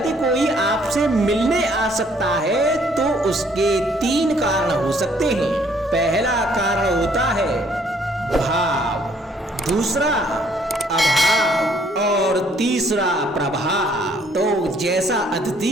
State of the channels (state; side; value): normal; both; correlation 0.63